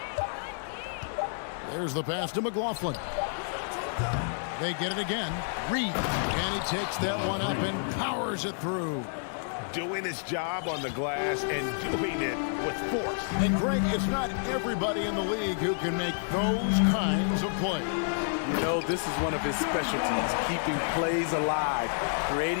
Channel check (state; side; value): silent; right; 58 dB below the other